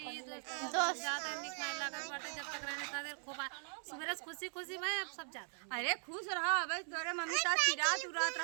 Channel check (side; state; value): left; silent; 51 dB below the other